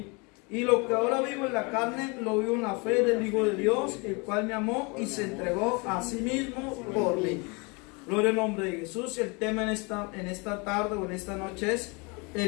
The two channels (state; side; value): quieter; right; 29.8 dB